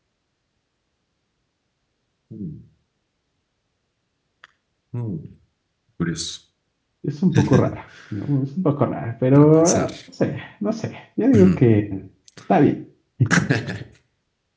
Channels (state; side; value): identical; both; correlation 1.00